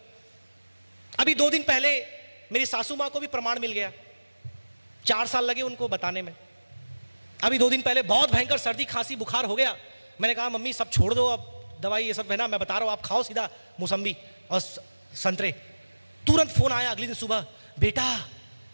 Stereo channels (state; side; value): inverted; both; correlation -1.00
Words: अभी 2 दिन पहले मेरी सासू मां को भी प्रमाण मिल गया, 4 साल लगे उनको बताने में। अभी 2 दिन पहले बहुत भयंकर सर्दी खांसी बुखार हो गया। मैंने कहा मम्मी सब छोड़ दो, अब दवाई ये सब है ना, मैं बता रहा हूं, आप खाओ सीधा मौसम्बी और संतरे। तुरंत फोन आया अगले दिन सुबह, बेटा